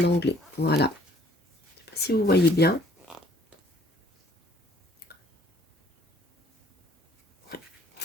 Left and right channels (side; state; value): both; normal; correlation 0.60